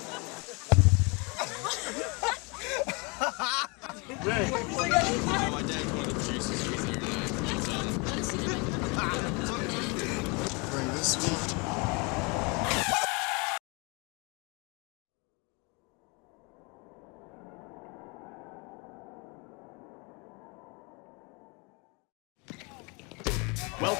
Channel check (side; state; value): right; quieter; 30.4 dB